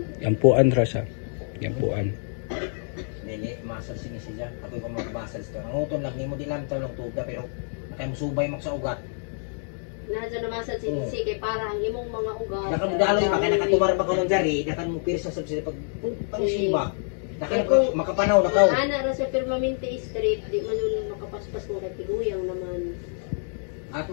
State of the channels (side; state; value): right; silent; 60 dB below the other